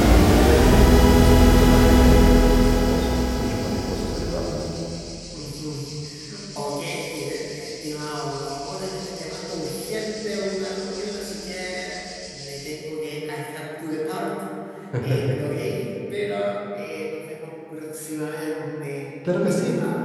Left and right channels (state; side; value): identical; both; correlation 1.00